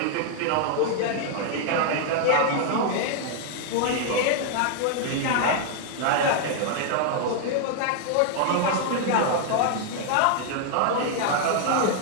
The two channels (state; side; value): different; both; correlation 0.00